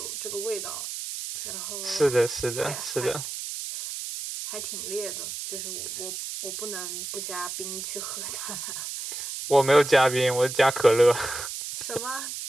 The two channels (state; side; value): noise; right; hiss, 6 dB below the sound